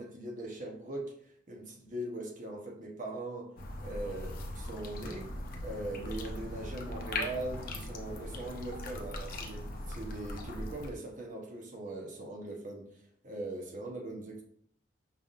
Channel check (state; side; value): normal; both; correlation 0.58